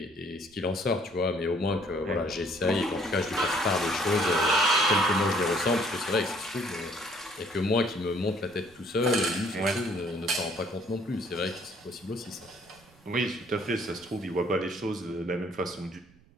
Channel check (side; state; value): right; noise; rumble, 29 dB below the sound